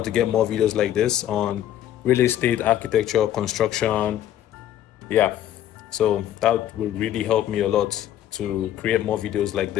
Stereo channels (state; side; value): quieter; right; 11.8 dB